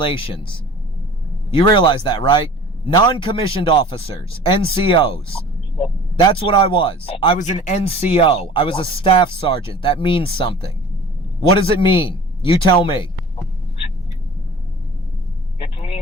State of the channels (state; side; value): normal; both; correlation 0.43